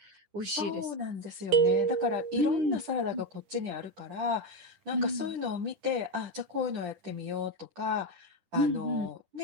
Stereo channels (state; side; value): late; left; 10 ms